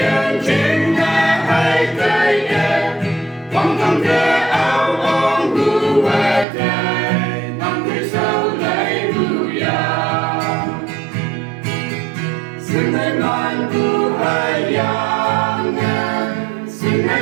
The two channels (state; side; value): drops out; left; at 6.5 s